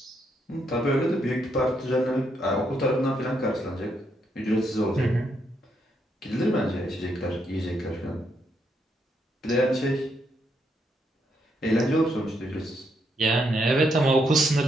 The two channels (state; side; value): normal; both; correlation 0.77